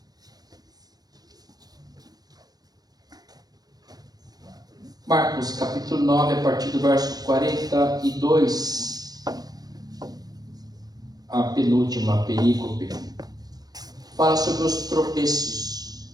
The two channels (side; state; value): left; late; 0.19 ms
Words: Marcos capítulo 9, a partir do verso 42, a penúltima perícope, fala sobre os tropeços.